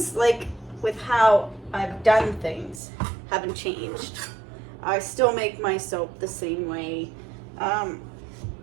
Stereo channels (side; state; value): left; drops out; at 2.8 s